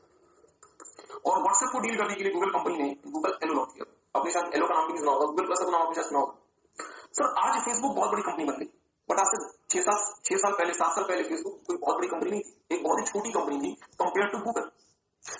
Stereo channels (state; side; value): identical; both; correlation 1.00